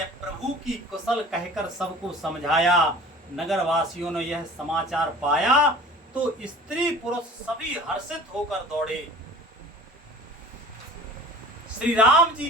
प्रभु की कुशल कहकर सबको समझाया। नगर वासियों ने यह समाचार पाया तो स्त्री पुरुष सभी हर्षित होकर दौड़े। श्री राम जी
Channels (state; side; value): normal; both; correlation 0.44